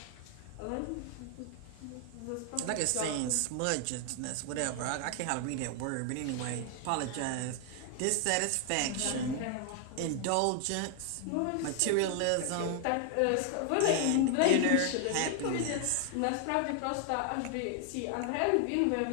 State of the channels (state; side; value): different; both; correlation 0.00